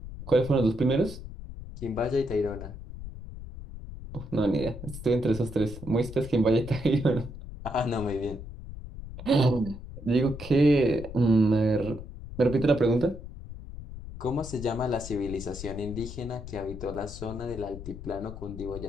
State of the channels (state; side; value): noise; left; rumble, 11 dB below the sound